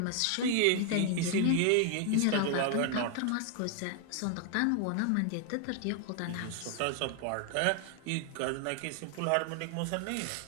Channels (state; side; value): different; both; correlation 0.00